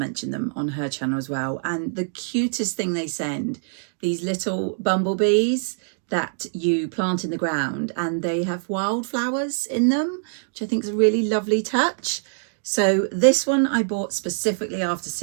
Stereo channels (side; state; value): left; silent; digital silence